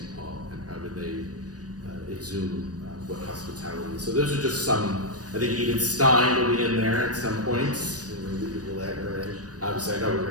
Paul and how do they exhume what hospitality is. So those are just some. I think Edith Stein will be in there at some points. Maybe we'll add her in. Obviously, I know we're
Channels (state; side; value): late; left; 0.68 ms